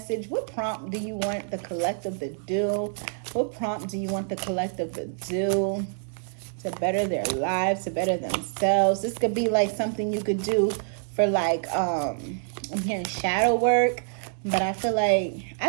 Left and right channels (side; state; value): left; silent; digital silence